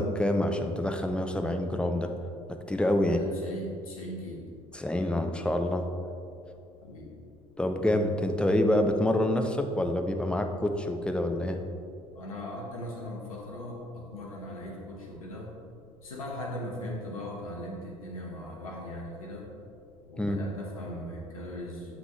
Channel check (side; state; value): left; noise; rumble, 29 dB below the sound